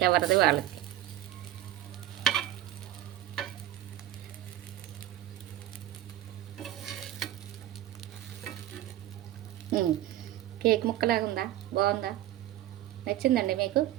ఎవరిది వాళ్ళకి. కేక్ ముక్కలాగా ఉందా? బాగుందా? నచ్చిందండి మీకు?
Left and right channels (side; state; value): left; quieter; 13.4 dB